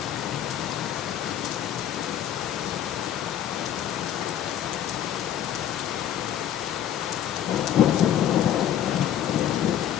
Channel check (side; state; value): right; quieter; 10.5 dB